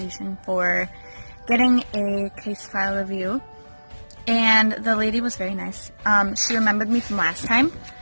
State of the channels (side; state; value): both; inverted; correlation -1.00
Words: for getting a case file review, and the lady was very nice. She remembered me from last time,